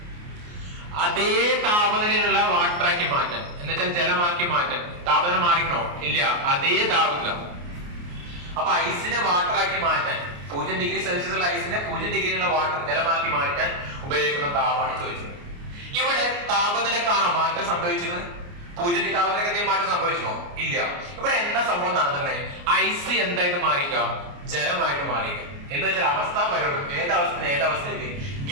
അതേ താപനിലയിലുള്ള വാട്ടറാക്കി മാറ്റാൻ എന്നുവെച്ചാൽ ജലമാക്കി മാറ്റാൻ താപനില മാറിക്കണോ ഇല്ല അതേ താപനില. അപ്പൊ ഐസിനെ വാട്ടറാക്കി മാറ്റാൻ 0 ഡിഗ്രി സെൽഷ്യസ് ഉള്ള ഐസിനെ 0 ഡിഗ്രിയുള്ള വാട്ടർ ജലമാക്കി മാറ്റാൻ ഉപയോഗിക്കുന്ന താപമാണ് ചോദിച്ചത്. ഇവിടെ താപനിലക്കാണോ മാറ്റം സംഭവിച്ചിരുന്നത്? 0 ഡിഗ്രി താപനിലക്ക് എന്തെങ്കിലും മാറ്റം സംഭവിച്ചോ ഇല്ല. ഇവിടെ എന്താ സംഭവം നടന്നത്? ഐസ് എന്തായിട്ട് മാറിക്കാം? ജലമായിട്ട് മാറിക്കാം. എന്ന് വെച്ചാൽ അവസ്ഥ പരവും ഏതവസ്ഥയിലേക്ക്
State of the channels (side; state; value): left; late; 29 ms